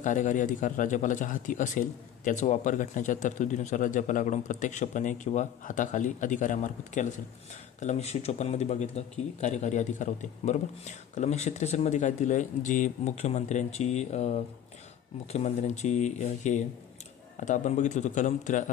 अधिकार राज्यपालाच्या हाती असेल त्याचा वापर घटनेच्या तरतुदीनुसार राज्यपालाकडून प्रत्यक्षपणे किंवा हाताखाली अधिकाऱ्यामार्फत केला असेल. कलम 154 बघितलं की कार्यकारी अधिकार होते, बरोबर. कलम 163 काय दिलं आहे, जी मुख्यमंत्र्यांची हे आता आपण बघितलं होतं कलम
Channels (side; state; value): right; quieter; 10.1 dB